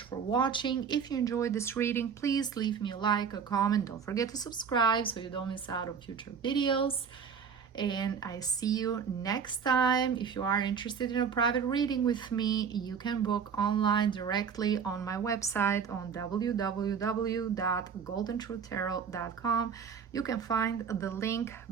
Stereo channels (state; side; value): quieter; left; 6.6 dB